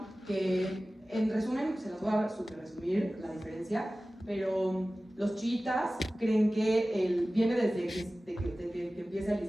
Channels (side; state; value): both; normal; correlation 0.97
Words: que en resumen, se las voy a super resumir la diferencia, pero los chiitas creen que viene desde que empieza el